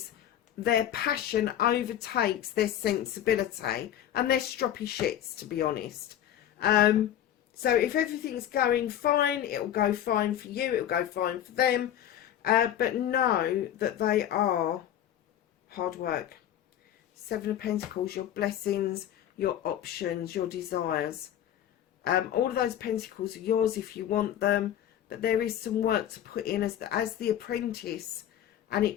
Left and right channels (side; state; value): right; quieter; 11.0 dB